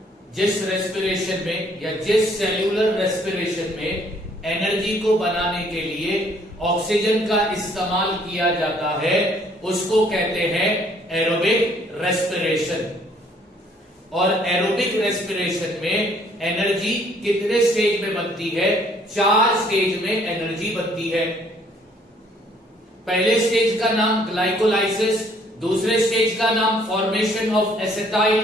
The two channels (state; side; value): normal; both; correlation 0.62